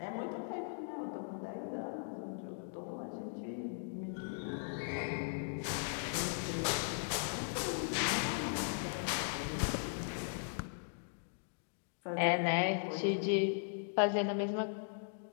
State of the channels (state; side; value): silent; right; digital silence